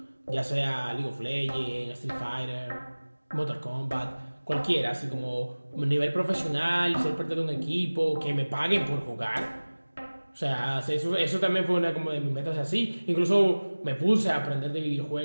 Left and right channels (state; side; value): inverted; both; correlation -1.00